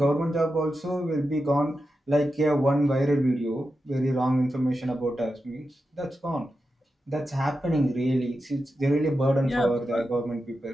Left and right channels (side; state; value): both; normal; correlation 0.90